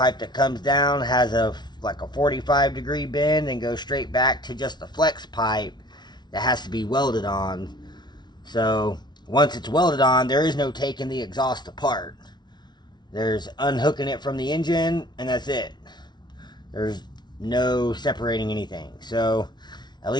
that comes down, has like a 45-degree bend, and goes straight back to just the flex pipe that has to be welded on. So once it's welded on, there is no taking the exhaust apart. There's unhooking it from the engine, and that's it. There's no separating anything. So at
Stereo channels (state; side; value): late; right; 0.20 ms